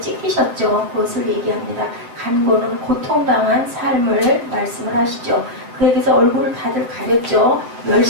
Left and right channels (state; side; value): late; left; 8.0 ms